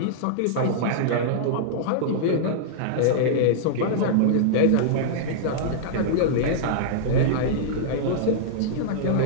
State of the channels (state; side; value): different; both; correlation -0.02